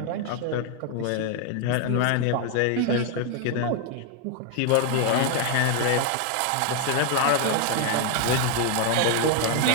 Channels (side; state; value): both; different; correlation 0.00